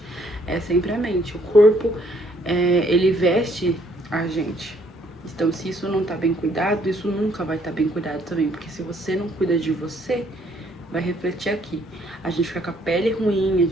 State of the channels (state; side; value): normal; both; correlation 0.66